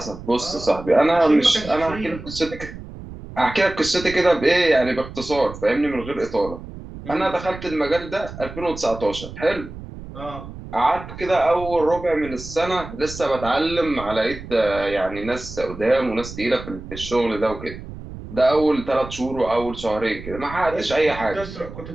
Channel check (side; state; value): right; noise; rumble, 13 dB below the sound